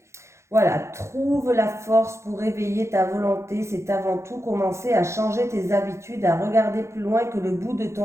Voilà, trouve la force pour réveiller ta volonté. C'est avant tout commencer à changer tes habitudes, à regarder plus loin que le bout de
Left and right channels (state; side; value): late; left; 0.14 ms